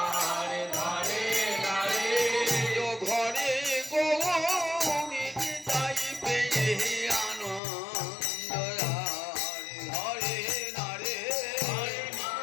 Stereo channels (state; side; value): drops out; right; at 7.6 s